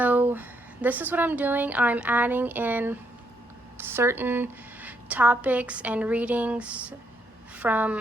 this is what I'm doing. I'm adding in certain topics and readings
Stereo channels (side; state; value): both; normal; correlation 0.75